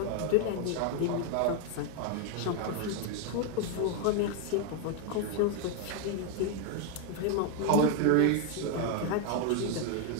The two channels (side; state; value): both; different; correlation 0.01